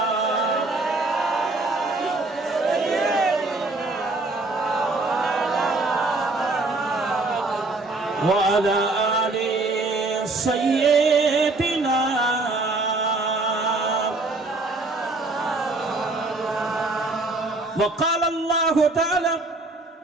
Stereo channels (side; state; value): left; quieter; 3.2 dB